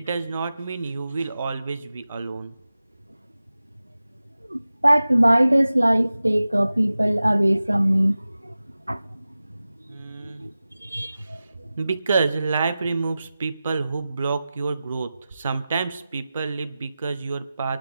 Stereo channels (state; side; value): inverted; both; correlation -0.95